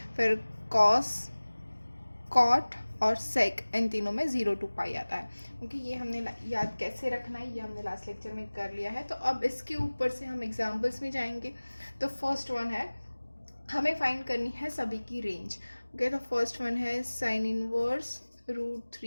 फिर कॉस, कॉट और सेक, इन तीनों में 0 to π आता है। क्योंकि ये हमने याद कैसे रखना है ये हमने लास्ट लेक्चर में कर लिया है। तो अब इसके ऊपर से हम एग्जाम्पल्स में जाएंगे। तो फर्स्ट वन है, हमें फाइंड करनी है सभी की रेंज। ओके, तो फर्स्ट वन है साइन इनवर्स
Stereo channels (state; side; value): inverted; both; correlation -1.00